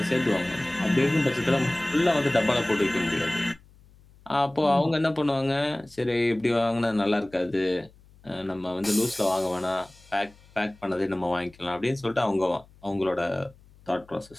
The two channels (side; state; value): left; noise; hum, 27 dB below the sound